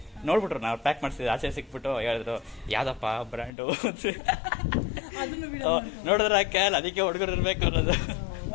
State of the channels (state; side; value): drops out; right; at 3.5 s